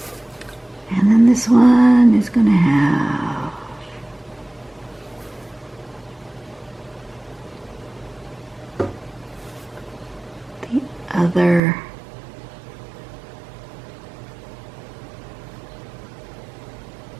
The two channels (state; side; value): drops out; left; at 11.6 s